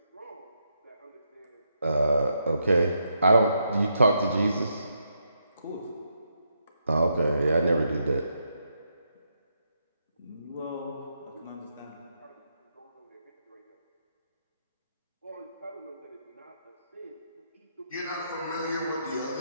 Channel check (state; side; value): inverted; both; correlation -0.80